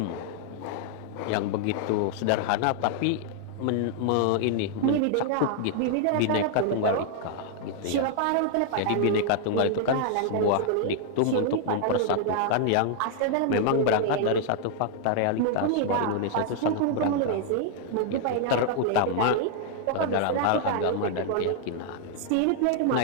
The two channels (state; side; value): different; both; correlation -0.01